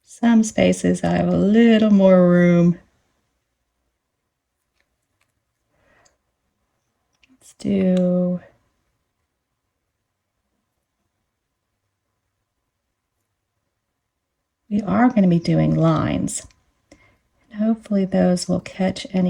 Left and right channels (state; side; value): identical; both; correlation 1.00